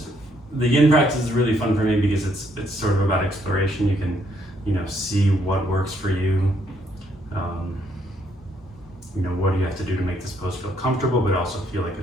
the yin practice is really fun for me because it's sort of about exploration. You can, see what works for you. What do you have to do to make this pose feel comfortable, but also feel like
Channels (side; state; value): both; normal; correlation 0.71